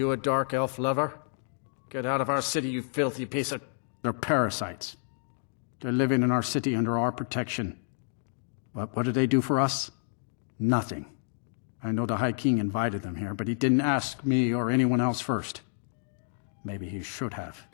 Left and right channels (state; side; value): silent; right; digital silence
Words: a dark elf lover? Get out of our city, you filthy piece of... They're parasites. They're living in our city under our protection. What did they do for us? Nothing. I know the High King invited them here, but he didn't ask me or anyone else first. Maybe he should have.